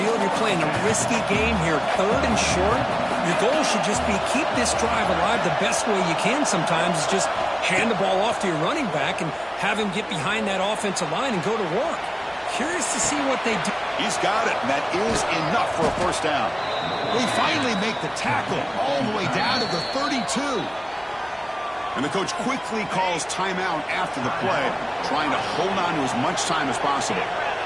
you're playing a risky game here. 3rd and short. Your goal should just be keep this drive alive the best way you can sometimes is just hand the ball off to your running back and have him get behind that offensive line and go to work. Curious to see what they do. He's got it, and that is enough for a first down. They finally make the tackle all the way down to the 32. And the coach quickly calls timeout after the play, trying to hold on to as much time as possible.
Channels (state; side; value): identical; both; correlation 1.00